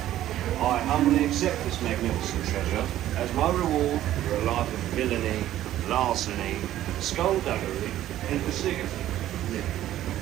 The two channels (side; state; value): left; quieter; 13.1 dB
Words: I humbly accept this magnificent treasure as my reward for a life of villainy, larceny, skullduggery, and facility.